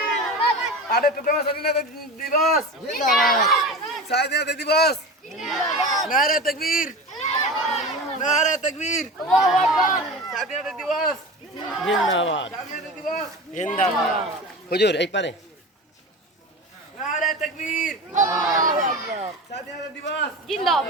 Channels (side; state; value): both; normal; correlation 0.30